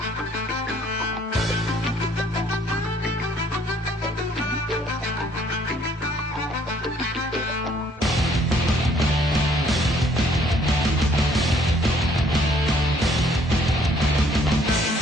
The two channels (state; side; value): normal; both; correlation 0.62